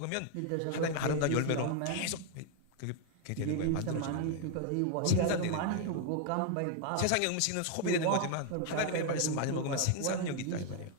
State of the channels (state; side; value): different; both; correlation 0.00